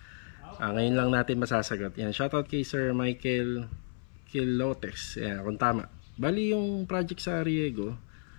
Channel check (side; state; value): right; silent; 57 dB below the other